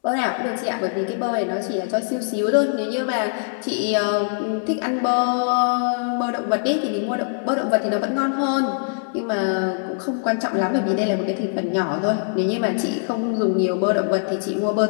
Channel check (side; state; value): right; silent; digital silence